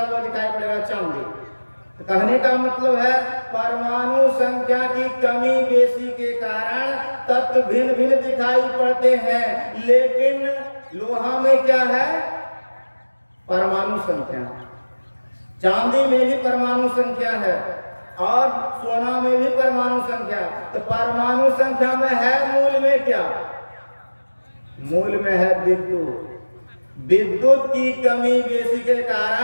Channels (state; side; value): inverted; both; correlation -1.00